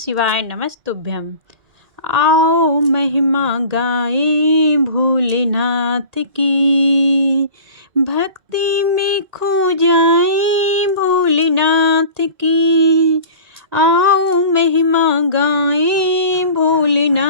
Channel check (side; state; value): left; late; 2.1 ms